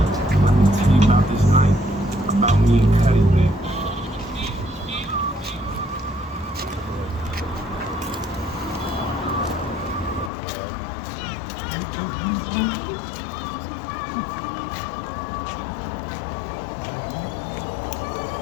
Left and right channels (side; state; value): right; drops out; at 10.3 s